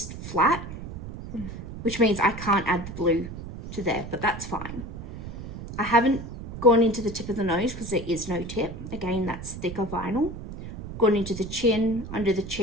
flat, which means I can't add the blue to there, but that's fine. I haven't gone into the tip of the nose because there is no tip. Again, that's thicker vinyl. Gone into the chin, under the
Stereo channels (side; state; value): right; noise; rumble, 10 dB below the sound